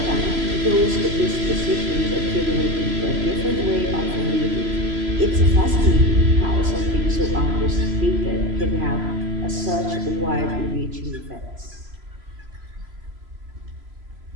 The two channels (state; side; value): late; left; 3.0 ms